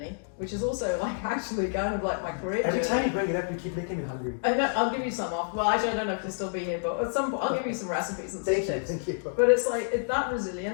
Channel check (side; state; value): right; silent; digital silence